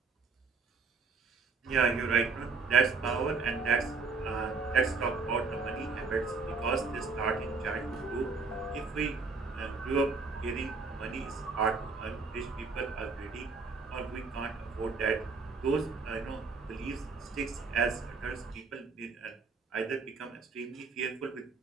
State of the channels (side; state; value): left; quieter; 4.5 dB